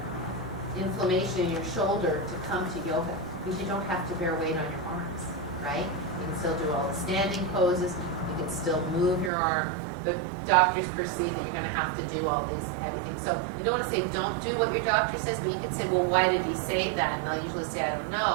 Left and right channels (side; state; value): left; drops out; at 9.3 s